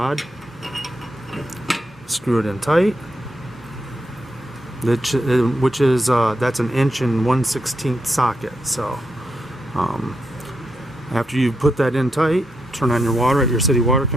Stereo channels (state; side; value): normal; both; correlation 0.82